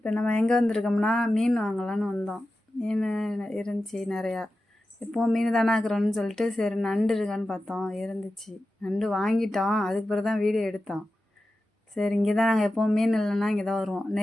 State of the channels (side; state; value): both; normal; correlation 0.93